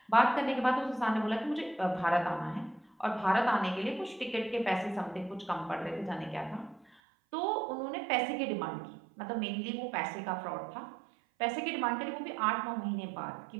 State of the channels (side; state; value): left; drops out; at 7.0 s